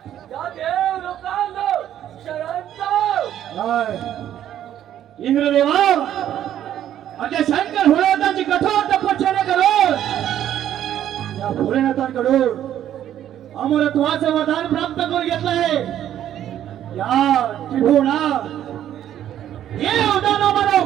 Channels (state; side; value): quieter; left; 11.2 dB